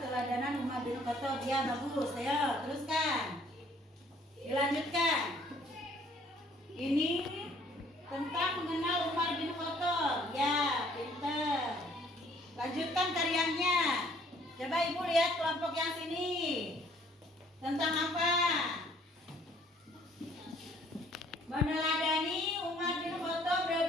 Umar bin Khattab. Ya, bagus. Ayo, teruskan. Dilanjutkan. Ini tentang mengenal Umar bin Khattab. Ya, pinter. Lanjutkan karyanya. Coba Ibu lihat kelompok yang sini. Tentang apa? Meneladani Umar bin Khattab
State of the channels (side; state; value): both; normal; correlation 0.60